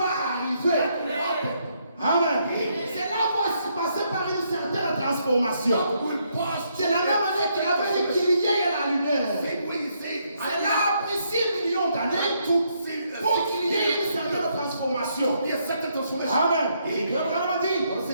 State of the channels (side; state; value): both; inverted; correlation -0.75